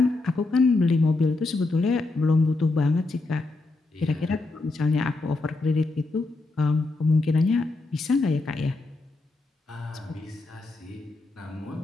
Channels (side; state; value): right; quieter; 3.3 dB